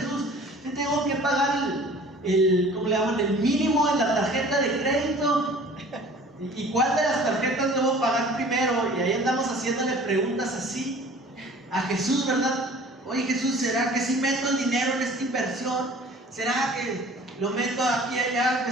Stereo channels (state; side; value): normal; both; correlation 0.48